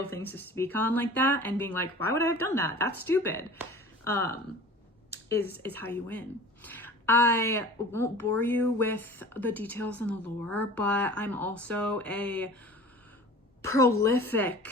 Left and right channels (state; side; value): normal; both; correlation 0.41